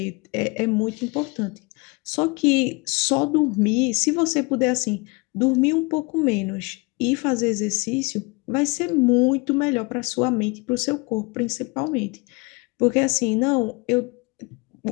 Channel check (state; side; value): quieter; right; 27.8 dB